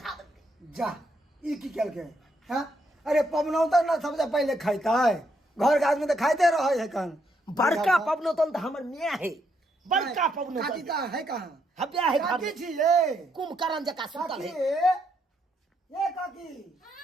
देलकै जा ई की केल के हां अरे पवनौता ना सबसे पहले खाइता है घर के आदमी तो खाइते रहे है कन बड़का पवनौतन तो हमर माय है बड़का काकी पवनौतन का है कहां हब्या है घर काकी में। छी ये कुंभकर्ण जका सुतल काकी है ये काकी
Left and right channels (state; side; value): normal; both; correlation 0.76